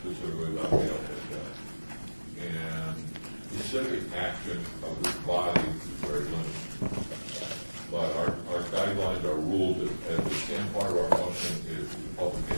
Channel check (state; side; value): inverted; both; correlation -1.00